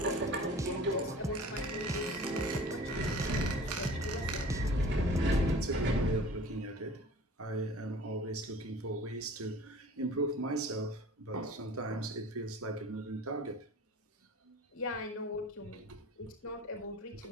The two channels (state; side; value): normal; both; correlation 0.44